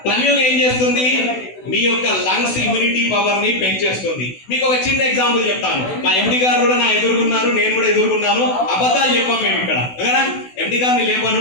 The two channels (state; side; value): late; right; 16 ms